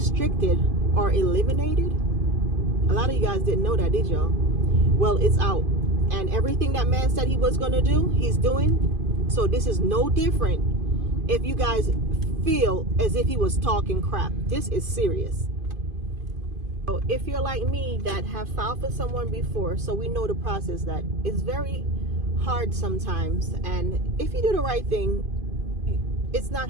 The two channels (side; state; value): left; late; 2.5 ms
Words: or eliminated? A lot of you guys didn't know that, did y'all? Well, it's out. And everything that man said he was going to do, he's doing. So this is no different if you guys feel as if he was talking crap. This is serious. So if you're like me that have filed for someone before, so we know the process, that it's very hard sometimes. And if you do the right thing, it's not